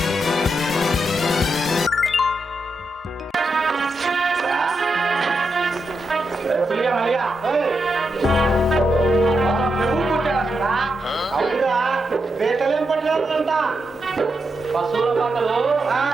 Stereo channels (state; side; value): normal; both; correlation 0.84